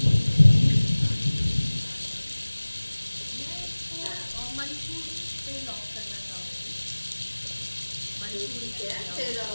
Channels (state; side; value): inverted; both; correlation -1.00